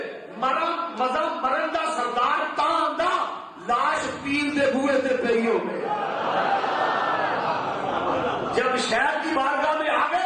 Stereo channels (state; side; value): identical; both; correlation 1.00